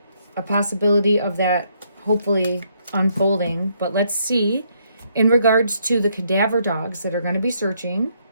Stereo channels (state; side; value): inverted; both; correlation -0.73